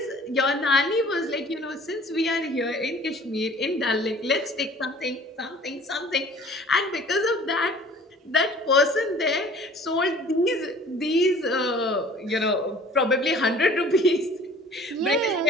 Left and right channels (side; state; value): both; normal; correlation 0.50